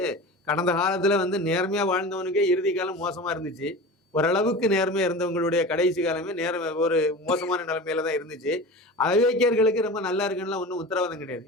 கடந்த காலத்துல வந்து நேர்மையா வாழ்ந்தவனுக்கே இறுதி காலம் மோசமா இருந்துச்சு. ஓரளவுக்கு நேர்மையா இருந்தவங்களுடைய கடைசி காலமே ஒரு மோசமான நிலைமையில தான் இருந்துச்சு. அயோக்கியர்களுக்கு ரொம்ப நல்லா இருக்குன்னு ஒன்றும் உத்தரவாதம் கிடையாது.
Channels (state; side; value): normal; both; correlation 0.33